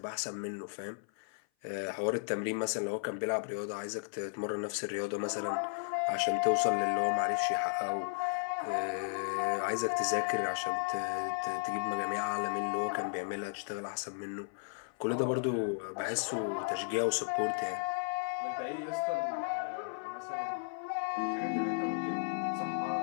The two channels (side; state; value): right; silent; 55 dB below the other